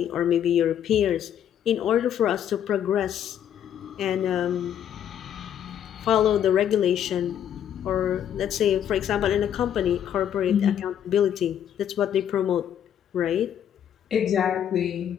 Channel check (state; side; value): quieter; right; 9.7 dB